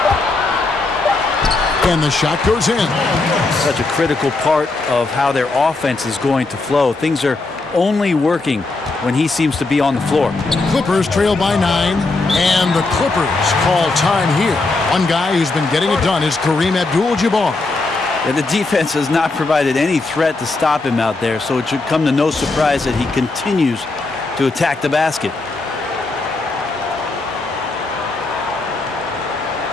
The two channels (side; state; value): right; quieter; 3.4 dB